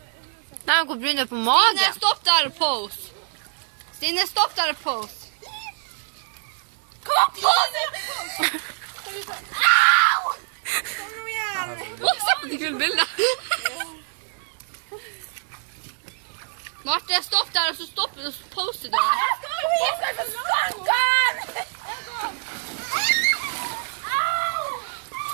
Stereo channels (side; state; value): left; silent; digital silence